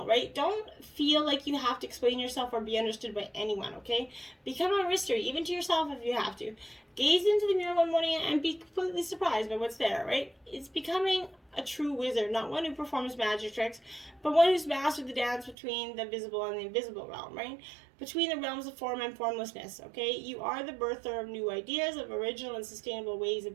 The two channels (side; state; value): left; drops out; at 15.6 s